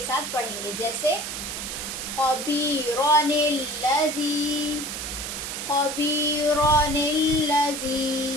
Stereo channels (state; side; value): noise; right; hiss, 5 dB below the sound